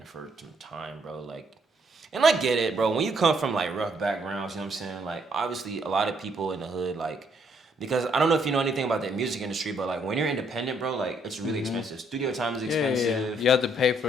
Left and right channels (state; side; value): normal; both; correlation 0.70